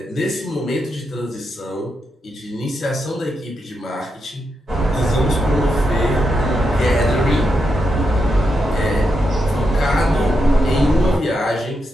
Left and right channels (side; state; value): both; normal; correlation 0.84